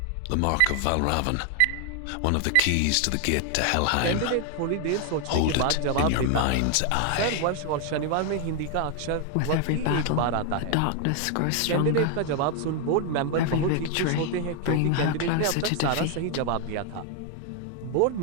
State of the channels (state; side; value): different; both; correlation 0.00